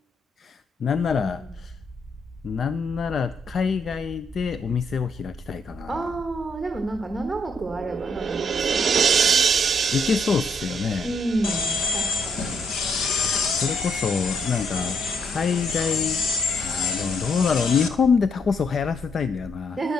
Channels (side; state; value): both; normal; correlation 0.74